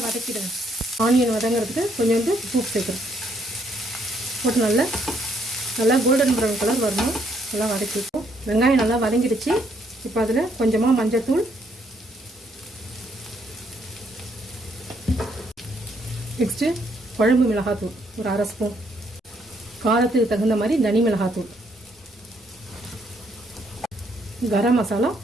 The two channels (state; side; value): normal; both; correlation 0.71